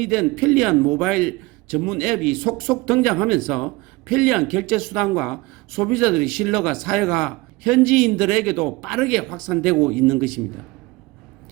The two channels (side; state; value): left; quieter; 21.5 dB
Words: 편리한 모바일 전문 앱이 속속 등장하면서 편리한 결제 수단과 소비자들의 신뢰가 사회가 현지인들에게도 빠르게 확산되고 있는 것입니다.